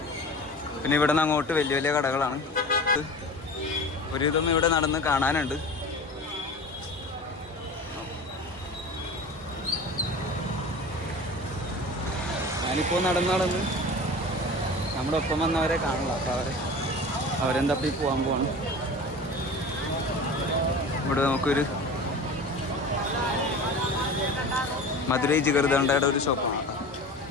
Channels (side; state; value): both; normal; correlation 0.36